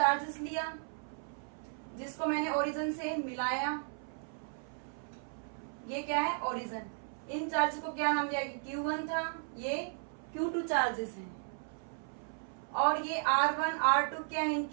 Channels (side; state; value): left; silent; 54 dB below the other